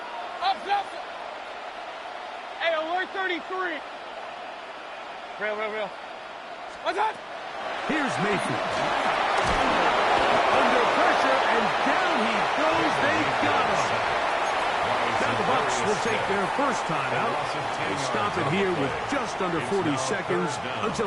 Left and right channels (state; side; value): identical; both; correlation 1.00